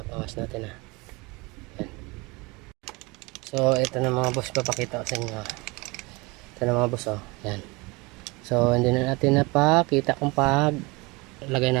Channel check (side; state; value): left; quieter; 25.5 dB